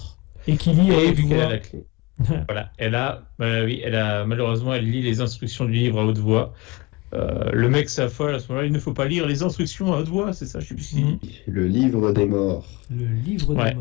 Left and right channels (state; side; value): quieter; right; 23.6 dB